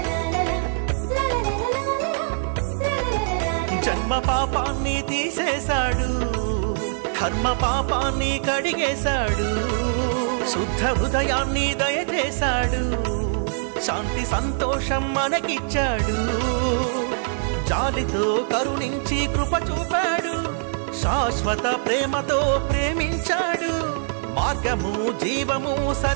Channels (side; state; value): left; silent; digital silence